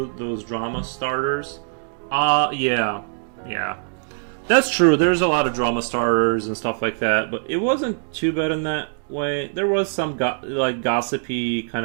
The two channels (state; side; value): silent; left; digital silence